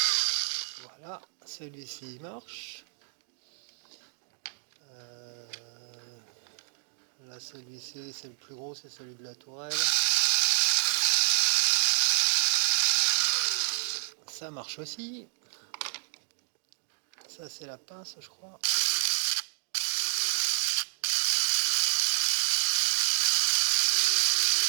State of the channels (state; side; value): silent; left; 58 dB below the other